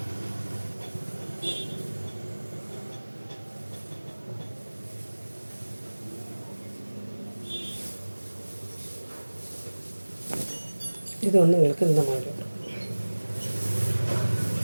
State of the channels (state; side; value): inverted; both; correlation -1.00